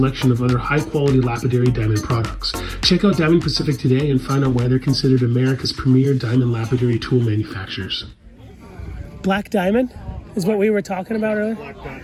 of other high-quality lapidary diamond products. Check out Diamond Pacific today and find out why they're considered America's premier diamond lapidary tool manufacturers. Black diamond is what we were talking about earlier? Black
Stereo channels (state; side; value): identical; both; correlation 1.00